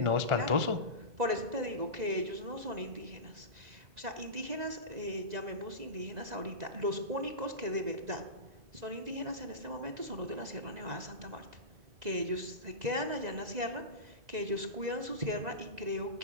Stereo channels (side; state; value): left; late; 2.0 ms